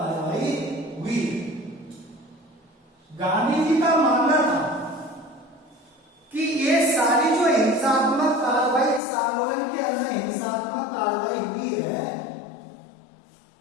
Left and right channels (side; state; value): right; drops out; at 9.0 s